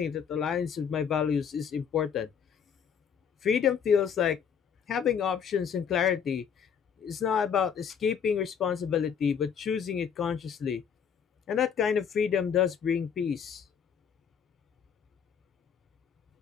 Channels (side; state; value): right; quieter; 7.4 dB